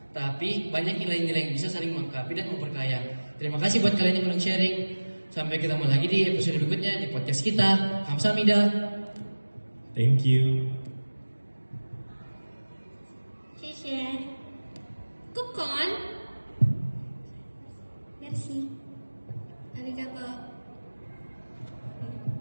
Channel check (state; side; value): inverted; both; correlation -1.00